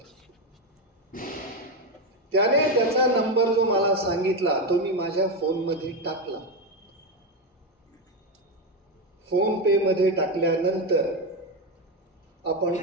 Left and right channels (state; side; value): normal; both; correlation 0.10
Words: त्याने त्याचा नंबर जो मला सांगितला तो मी माझ्या फोनमध्ये टाकला. फोन पे मध्ये टाकल्यानंतर आपण